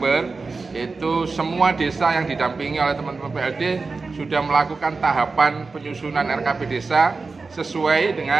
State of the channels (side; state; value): left; quieter; 4.1 dB